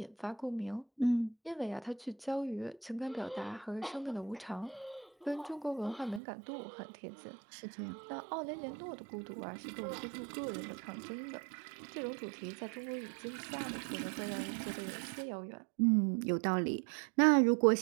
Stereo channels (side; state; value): left; drops out; at 6.2 s